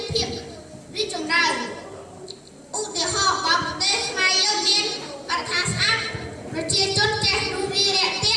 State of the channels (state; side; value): identical; both; correlation 1.00